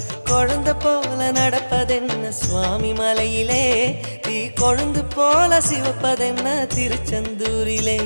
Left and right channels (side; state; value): both; inverted; correlation -1.00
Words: குழந்தை போல நடப்பதென்ன சுவாமி மலையிலே, தீ கொழுந்து போல சிவப்பதென்ன திருச்செந்தூரிலே.